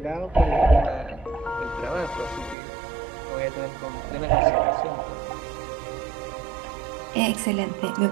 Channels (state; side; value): drops out; left; at 2.6 s